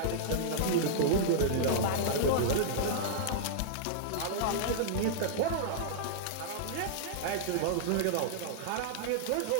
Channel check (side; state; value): both; different; correlation -0.02